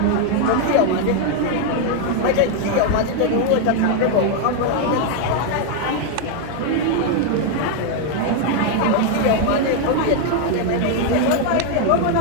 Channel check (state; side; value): different; both; correlation 0.01